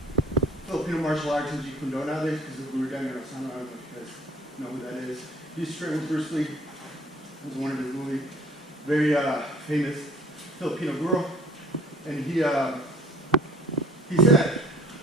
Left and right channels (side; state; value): both; normal; correlation 0.52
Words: Filipino martial arts in Jiu-Jitsu nowadays because of Guro. I don't know if you guys know who that is. He used to train with Bruce Lee. It was one of his really very famous Filipino Guro. And he said